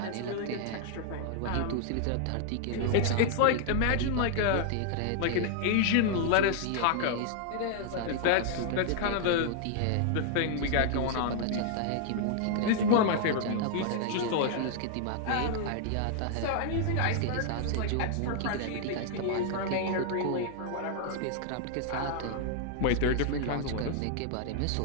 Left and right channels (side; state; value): both; different; correlation 0.00